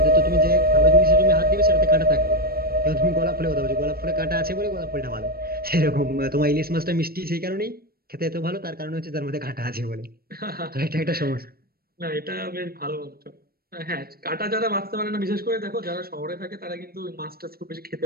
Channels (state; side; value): late; left; 0.44 ms